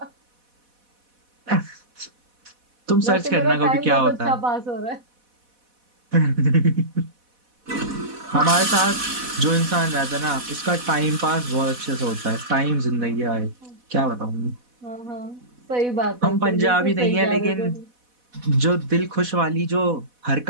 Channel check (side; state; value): left; late; 4.1 ms